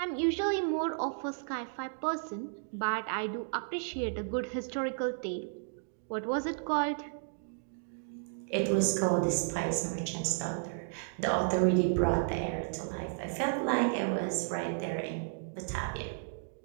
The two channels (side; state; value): left; silent; digital silence